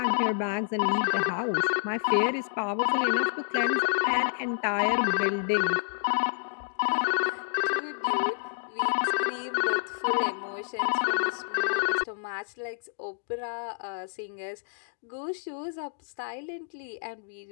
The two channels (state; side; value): silent; right; digital silence